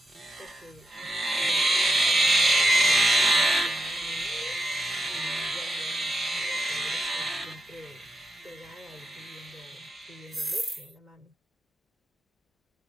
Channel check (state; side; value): normal; both; correlation 0.84